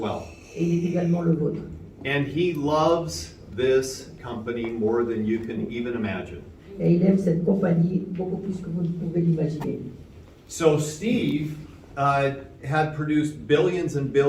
Et il est également le vôtre. And he loves this company more than you can even imagine. Et il aime cette compagnie beaucoup plus que vous ne pouvez l'imaginer. So Steve had produced billions and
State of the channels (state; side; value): identical; both; correlation 1.00